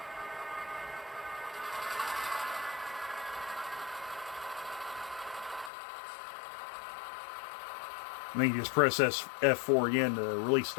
And then you just press F4 again to release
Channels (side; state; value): right; drops out; at 5.7 s